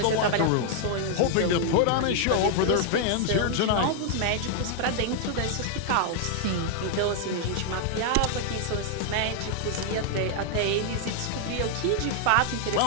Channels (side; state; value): both; different; correlation 0.00